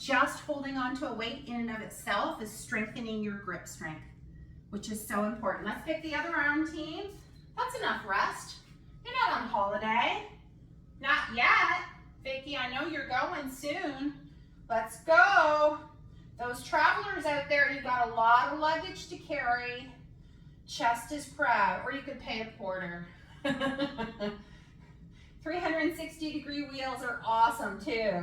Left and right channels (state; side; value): identical; both; correlation 1.00